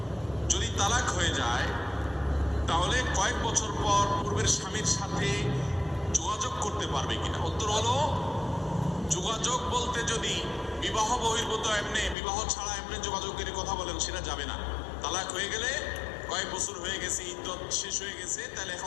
যদি তালাক হয়ে যায় তাহলে কয়েক বছর পর পূর্বের স্বামীর সাথে যোগাযোগ করতে পারবে কিনা। উত্তর হলো যোগাযোগ বলতে যদি বিবাহ বহির্ভূত এমনি বিবাহ ছাড়া এমনি যোগাযোগের কথা বলেন সেটা যাবে না। তালাক হয়ে গেলে কয়েক বছর হয়ে গেছে, ইদ্যত শেষ হয়ে গেছে, তাহলে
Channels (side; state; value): right; drops out; at 12.2 s